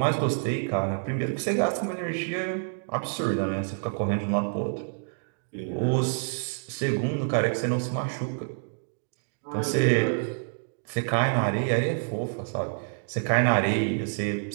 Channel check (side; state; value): left; silent; digital silence